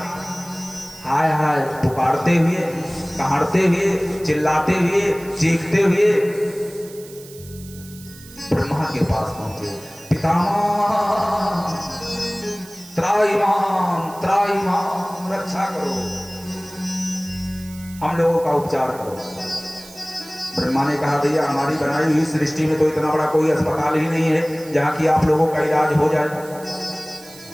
हाय हाय पुकारते हुए, कहाड़ते हुए, चिल्लाते हुए, चीखते हुए ब्रह्मा के पास पहुंचे। पितामह त्राहिमाम त्राहिमाम, रक्षा करो, हम लोगों का उपचार करो। ब्रह्मा ने कहा भैया हमारी बनाई हुई सृष्टि में तो इतना बड़ा कोई अस्पताल ही नहीं है जहां कि आप लोगों का इलाज हो जाए।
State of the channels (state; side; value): noise; right; hiss, 19 dB below the sound